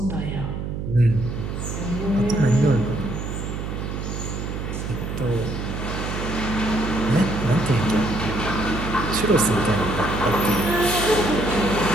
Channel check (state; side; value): noise; right; hum, 5 dB below the sound